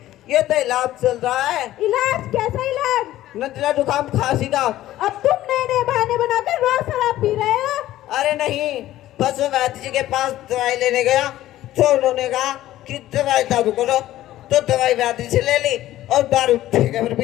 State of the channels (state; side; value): quieter; right; 14.4 dB